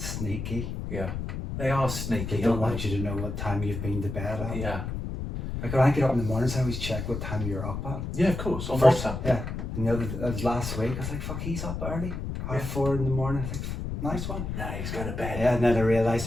Yeah. They are sneaky. They don't want you to know what time you've been to bed at. Yeah. Like when I get up in the mornings, I always check what time you're up at. Yeah, of course. On WhatsApp. Yeah. And that was last week. I was like, fuck, he's up early. 4:30 in the morning. I was like, nice one. No, he's going to bed. Yeah, and then I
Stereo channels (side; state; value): left; noise; rumble, 5 dB below the sound